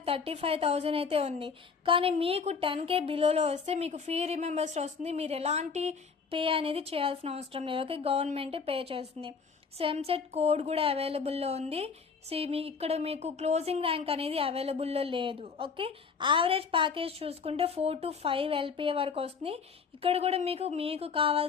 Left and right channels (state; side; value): quieter; right; 5.5 dB